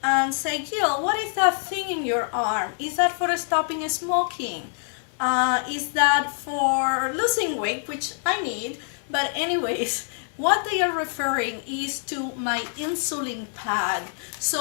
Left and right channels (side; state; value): right; silent; digital silence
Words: and say, Jill, what is that thing in your arm? Is that for stopping smoking? Is that for losing weight, which I need? But anyways, what they are referring is to my insulin pad.